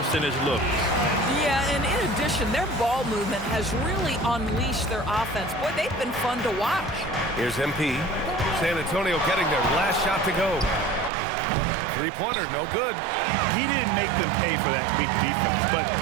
looks. Yeah, and in addition, their ball movement has really unleashed their offense. Boy, they've been fun to watch. Here's MP. San Antonio getting their last shot to go. Three-pointer, no good. He didn't make them pay for that weak defense, but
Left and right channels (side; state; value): left; drops out; at 11.1 s